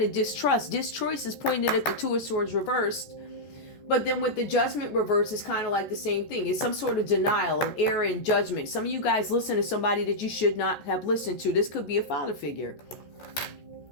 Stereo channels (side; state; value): right; late; 14 ms